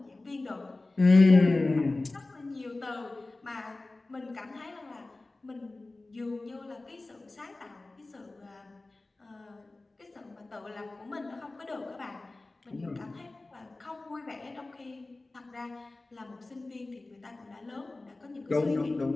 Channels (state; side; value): quieter; right; 3.1 dB